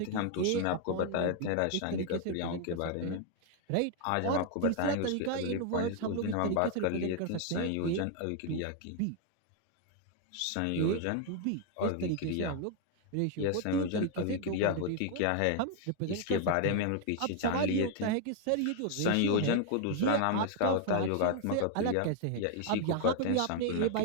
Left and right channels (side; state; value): both; different; correlation 0.00